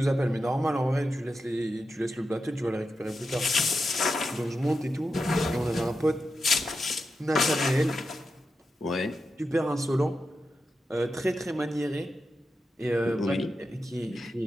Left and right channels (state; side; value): normal; both; correlation 0.89